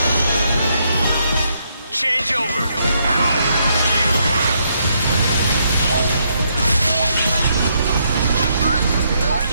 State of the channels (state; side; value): inverted; both; correlation -0.76